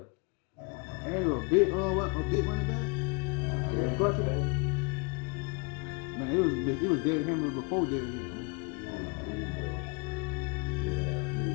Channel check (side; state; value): right; quieter; 30.6 dB